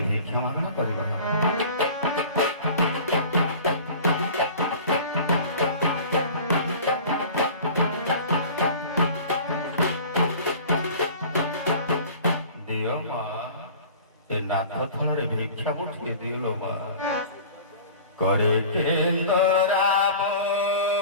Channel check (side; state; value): both; inverted; correlation -0.41